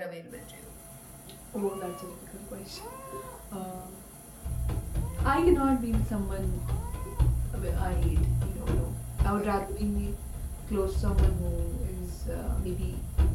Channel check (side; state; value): both; identical; correlation 1.00